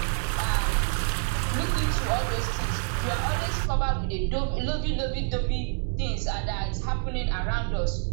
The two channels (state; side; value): silent; left; 60 dB below the other